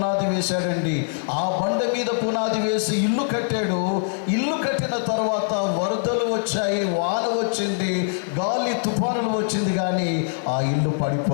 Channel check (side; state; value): right; silent; digital silence